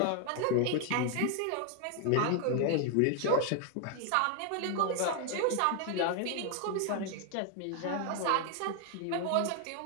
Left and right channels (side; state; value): both; different; correlation 0.01